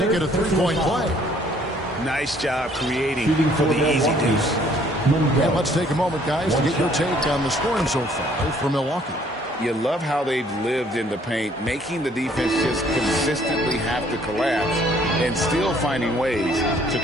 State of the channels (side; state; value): both; normal; correlation 0.61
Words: it a three-point play. Nice job creating for the easy deuce. And let's take a moment, guys, to get your take on the scoring so far for Milwaukee. You love how they've lived in the paint, making the defense just consistently have to collapse and still finding ways to